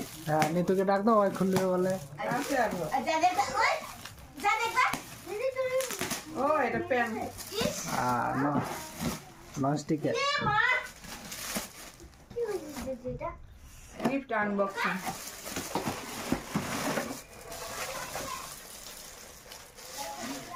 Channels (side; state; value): both; identical; correlation 1.00